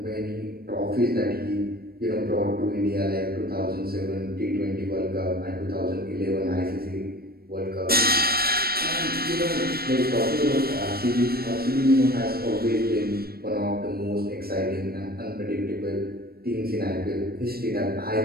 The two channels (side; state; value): left; late; 0.44 ms